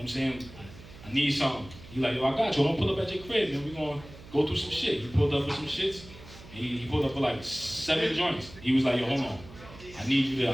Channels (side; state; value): right; noise; hum, 18 dB below the sound